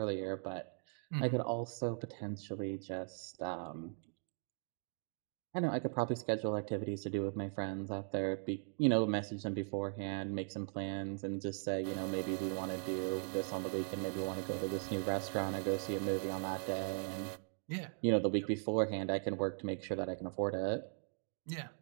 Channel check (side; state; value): left; silent; 52 dB below the other